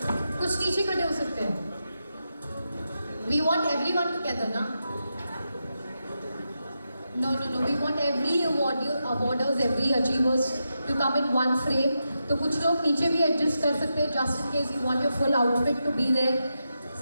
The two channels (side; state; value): both; inverted; correlation -0.87